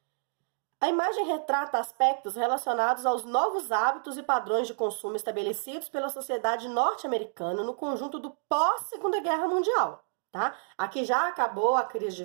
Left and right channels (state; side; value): silent; left; digital silence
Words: A imagem retrata aspectos relacionados aos novos hábitos e padrões de consumo estabelecidos pela sociedade norte-americana no conjunto do pós-Segunda Guerra Mundial, tá? Aqui já acabou a crise de